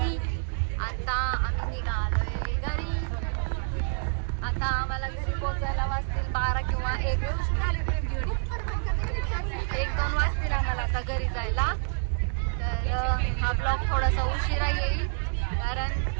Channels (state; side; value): silent; left; digital silence